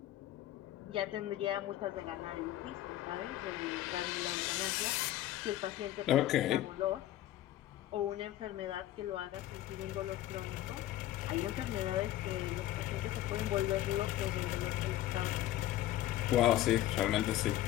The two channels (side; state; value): right; quieter; 14.0 dB